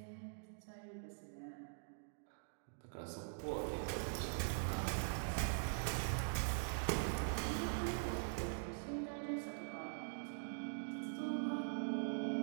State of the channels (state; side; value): silent; left; digital silence